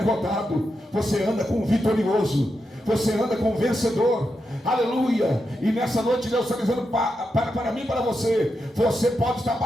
você anda com vitorioso. Você anda com vencedor. Aleluia. E nessa noite Deus está dizendo para mim e para você, você pode estar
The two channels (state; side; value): normal; both; correlation 0.86